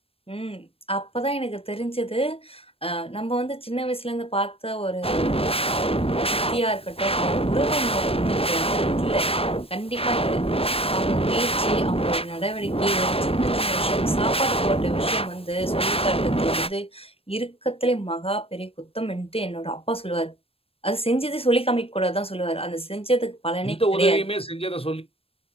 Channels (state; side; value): late; right; 0.28 ms